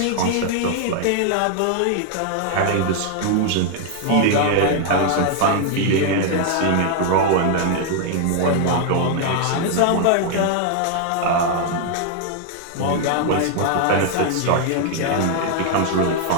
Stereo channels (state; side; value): different; both; correlation 0.00